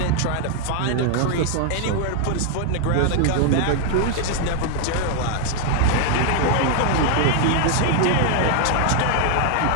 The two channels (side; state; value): both; different; correlation 0.00